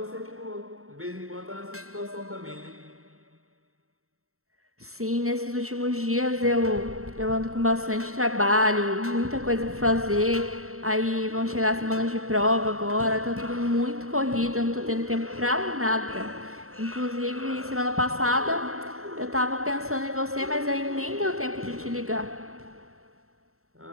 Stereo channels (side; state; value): left; late; 0.63 ms